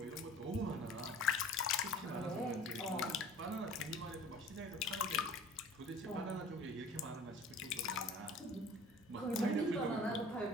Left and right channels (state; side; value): normal; both; correlation 0.46